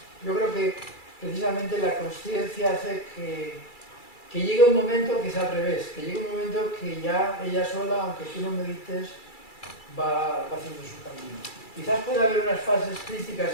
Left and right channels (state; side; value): late; right; 2.3 ms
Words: Yo creo que precisamente la consciencia hace que llegue un momento que es al revés, que llegue un momento que ya ella sola, aunque tú no medites, va haciendo su camino. Quizás pueda haber unas fases críticas